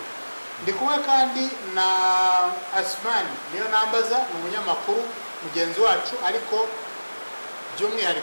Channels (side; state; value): both; inverted; correlation -1.00